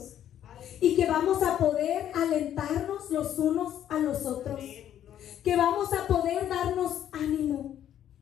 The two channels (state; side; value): quieter; right; 10.7 dB